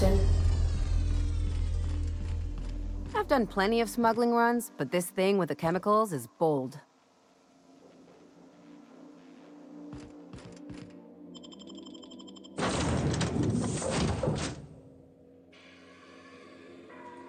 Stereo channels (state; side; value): identical; both; correlation 1.00